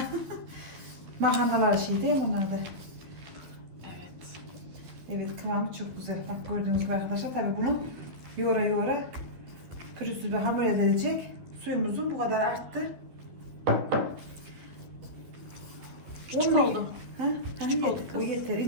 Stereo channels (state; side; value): late; left; 12 ms